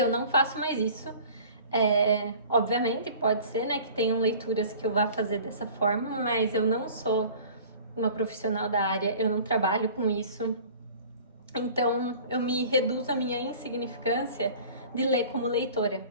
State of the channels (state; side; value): inverted; both; correlation -0.45